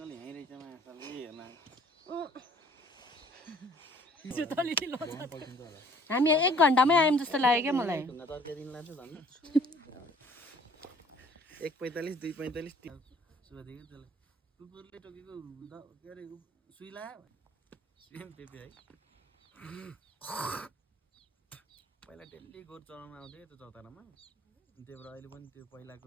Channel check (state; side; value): normal; both; correlation 0.56